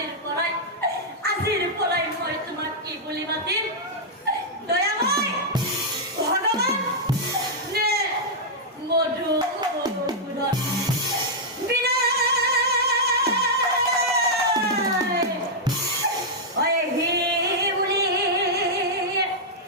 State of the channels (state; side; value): normal; both; correlation -0.06